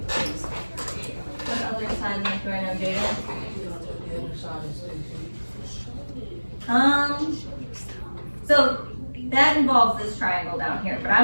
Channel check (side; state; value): both; inverted; correlation -1.00